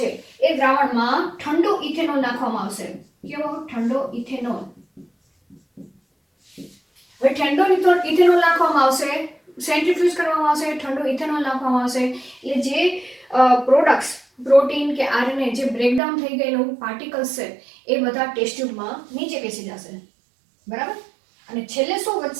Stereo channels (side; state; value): left; drops out; at 16.0 s